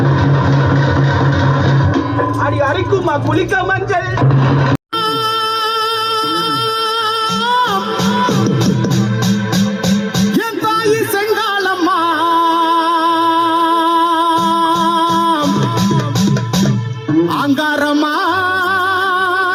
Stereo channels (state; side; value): identical; both; correlation 1.00